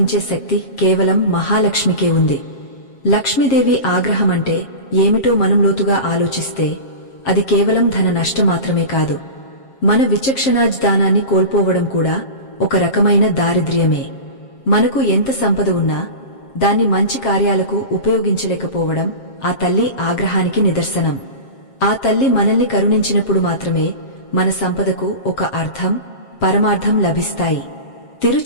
శక్తి కేవలం మహాలక్ష్మికే ఉంది. లక్ష్మీదేవి ఆగ్రహమంటే ఏమిటో మనం లోతుగా ఆలోచిస్తే అది కేవలం ధన నష్టం మాత్రమే కాదు, మన విచక్షణాజ్ఞానాన్ని కోల్పోవడం కూడా ఒక రకమైన దారిద్ర్యమే. మనకు ఎంత సంపద ఉన్నా దాన్ని మంచి కార్యాలకు ఉపయోగించలేకపోవడం ఆ తల్లి ఆగ్రహానికి నిదర్శనం. ఆ తల్లి మనల్ని కరుణించినప్పుడు మాత్రమే మన సంపదకు ఒక అర్థం, పరమార్థం లభిస్తాయి.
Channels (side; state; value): right; late; 7.4 ms